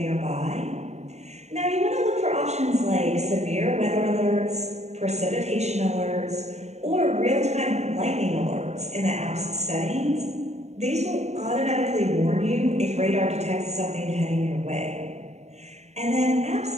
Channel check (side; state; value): left; late; 0.32 ms